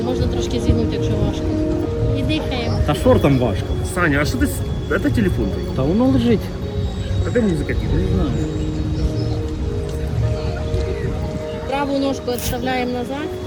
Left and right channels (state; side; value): identical; both; correlation 1.00